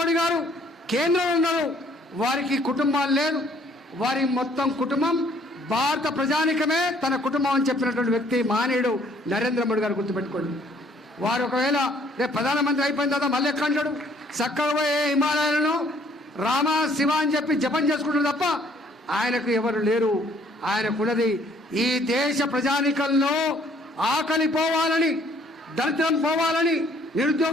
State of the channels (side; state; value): both; normal; correlation 0.62